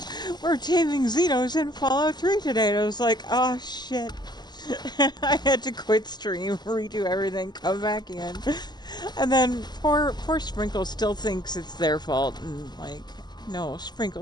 we're taming Xenos in Fallout 3 today. And I was like, oh shit. I had to quit stream, redo everything, come back in. And then poor Sprinkle still thinks it's their fault. And like, no,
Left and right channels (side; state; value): right; late; 0.21 ms